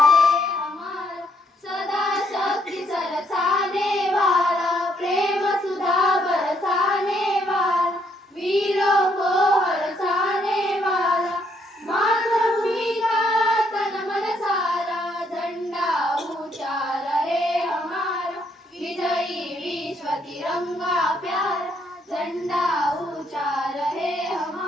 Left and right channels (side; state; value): both; normal; correlation 0.71